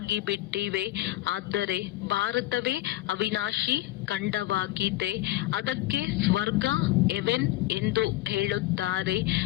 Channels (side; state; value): right; quieter; 16.8 dB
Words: ಬಿಟ್ಟಿವೆ. ಆದರೆ ಭಾರತವೇ ಅವಿನಾಶಿ ಖಂಡವಾಗಿದೆ. ಅದಕ್ಕೆ ಸ್ವರ್ಗ, ಹೆವೆನ್ ಎಂದು ಹೇಳುತ್ತಾರೆ.